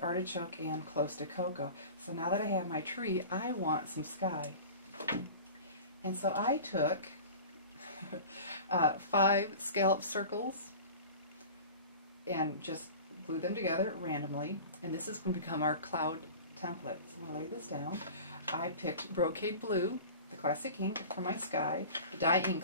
and Close to Cocoa. So now that I have my tree, I want some sky. And so I took 5 scallop circles and just glue them together randomly, and this is going to become our cloud template. So I'm going to lay this down. I picked Brocade Blue, the classic ink, for my sky. The dye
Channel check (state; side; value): inverted; both; correlation -0.38